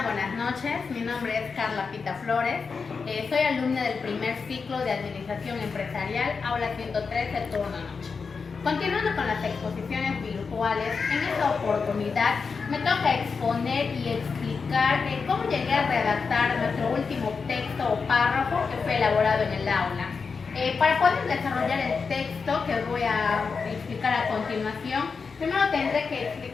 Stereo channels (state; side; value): quieter; right; 5.1 dB